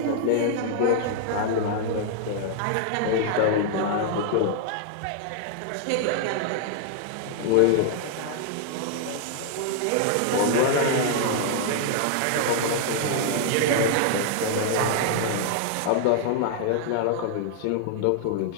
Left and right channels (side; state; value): both; different; correlation -0.01